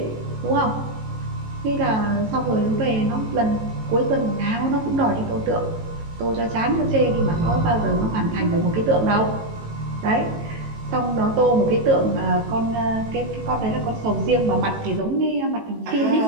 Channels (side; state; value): left; late; 18 ms